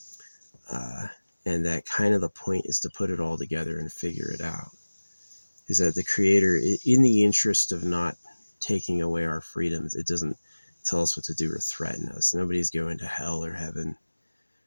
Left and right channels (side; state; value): both; inverted; correlation -1.00